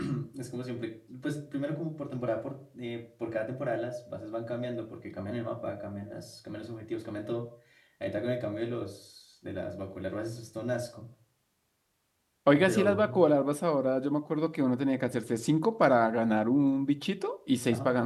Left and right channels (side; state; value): both; identical; correlation 1.00